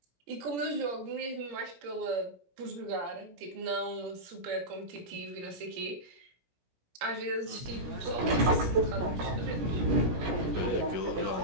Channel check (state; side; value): late; left; 17 ms